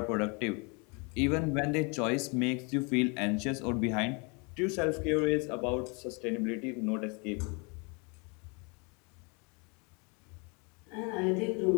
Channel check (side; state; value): right; quieter; 31.8 dB